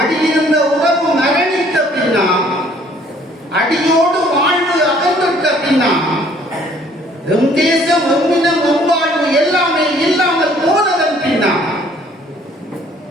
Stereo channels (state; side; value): normal; both; correlation 0.59